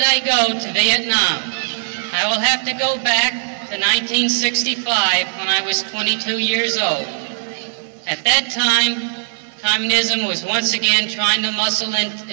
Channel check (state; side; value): silent; left; 64 dB below the other